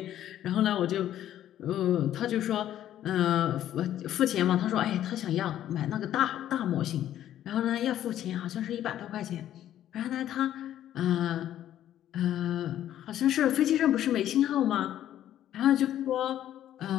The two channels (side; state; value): right; quieter; 11.8 dB